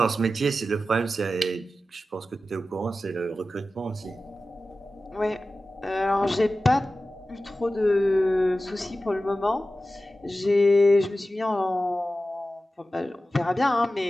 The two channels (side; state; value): both; normal; correlation 0.94